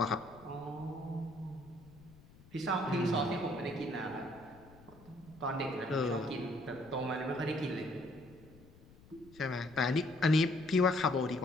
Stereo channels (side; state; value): left; noise; rumble, 23 dB below the sound